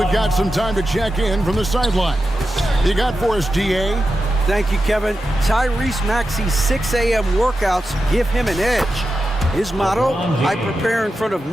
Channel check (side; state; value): both; normal; correlation 0.90